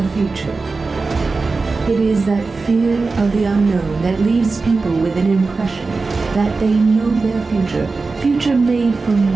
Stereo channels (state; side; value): quieter; left; 4.0 dB